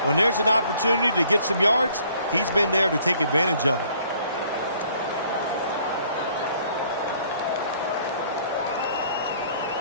When there's an opportunity to get some yards, he's been there to take advantage of it.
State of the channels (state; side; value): inverted; both; correlation -0.60